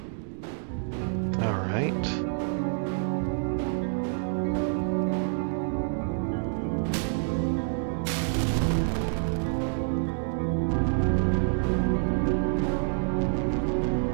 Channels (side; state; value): left; silent; digital silence